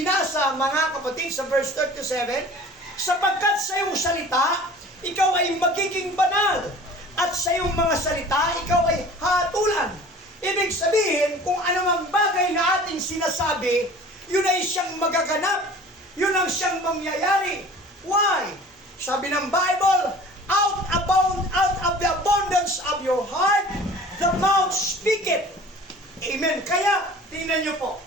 mga kapatid, sa verse 37, sapagkat sa iyong salita, ikaw ay magiging banal, at sa iyong mga salita, ikaw ay hatulan. Ibig sabihin, kung anumang bagay na ating sinasabi, yun ay siyang magaganap. Yun ang siyang mangyayari. Why? Sabi ng Bible, out of the abundance of your heart, the mouth speaketh. Amen. Kaya, tingnan niyo po,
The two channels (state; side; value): normal; both; correlation 0.44